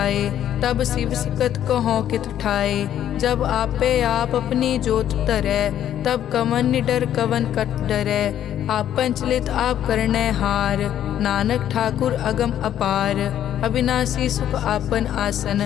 तब शिव सकत कहो कित ठाए। जब आपे आप अपनी जोत तरै, तब कवन निडर कवन कट डरै। आपन चलित आप करने हार, नानक ठाकुर अगम अपार। अविनाशी सुख आपन आसन,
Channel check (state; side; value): quieter; right; 10.8 dB